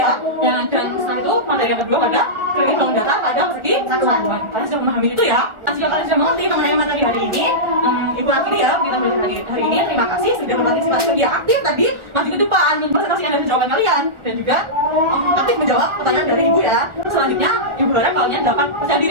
Dan setelah itu materi yang kedua pada kredit bangun data pada persegi satuan. Kalian sudah memahami itu ya. Jika kalian sudah mengerti mengenai materi hari ini, ibu akhiri ya kita belajar hari ini. Terima kasih sudah berpartisipasi media aktif tadi. Maju ke depan mempresentasikan dari jawaban kalian dan juga aktif menjawab pertanyaan dari ibu ya. Selanjutnya ibu harap kalian dapat percaya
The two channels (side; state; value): left; late; 1.4 ms